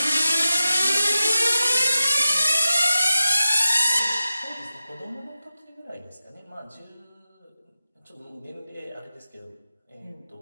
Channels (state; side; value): inverted; both; correlation -0.92